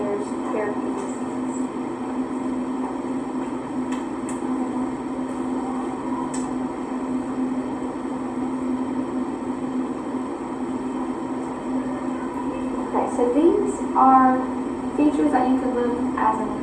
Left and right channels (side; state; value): both; identical; correlation 1.00